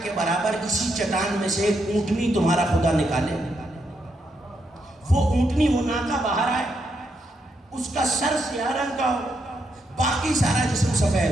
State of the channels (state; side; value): normal; both; correlation 0.80